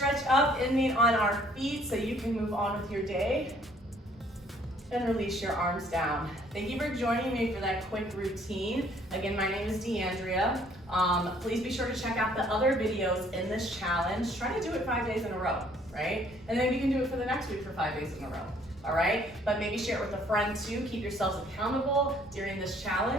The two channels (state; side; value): normal; both; correlation 0.61